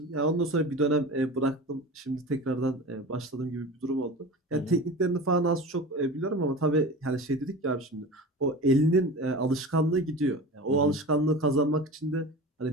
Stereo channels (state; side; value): normal; both; correlation 0.33